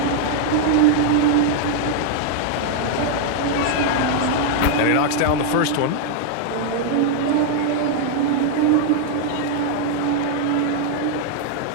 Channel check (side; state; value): both; different; correlation 0.00